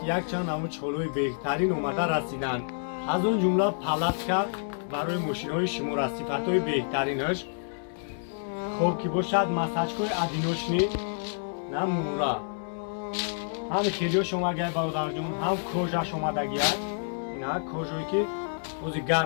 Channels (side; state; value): right; silent; 59 dB below the other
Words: якчанд намудҳои беҳтарин омада расиданд. Аз он ҷумла палатка барои мошинҳои шумора, сифатҳои беҳтаринаш, хоб ки бошад масаҷкои одиночни на мура. ҳам хелиёш омадаги бародарҷон, ҳам кожаш омадаги аст. Ина кожое ки ози